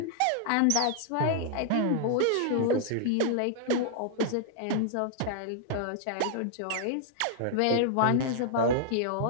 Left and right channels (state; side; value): different; both; correlation -0.01